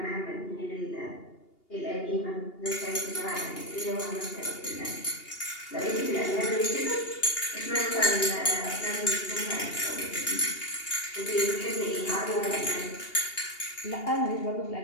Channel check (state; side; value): late; right; 2.8 ms